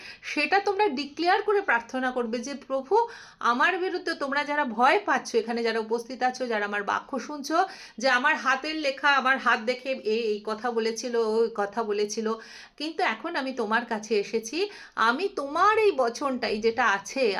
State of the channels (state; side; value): identical; both; correlation 1.00